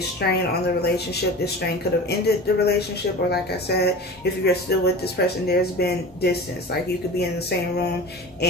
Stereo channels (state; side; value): normal; both; correlation 0.35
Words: strain on the relationship. This strain could have ended the relationship, or like I said, if you're still with this person, there's been distance. Like you could be in the same room